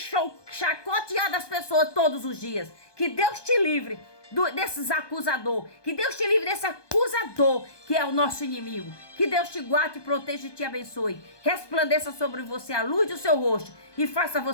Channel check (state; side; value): late; right; 1.2 ms